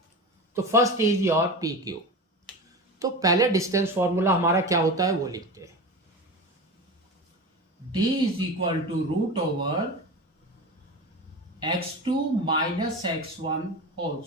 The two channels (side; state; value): both; normal; correlation 0.28